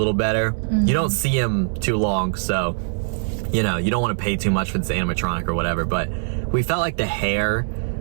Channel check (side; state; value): left; silent; digital silence